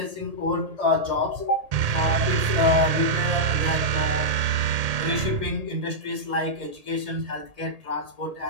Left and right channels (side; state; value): left; late; 1.8 ms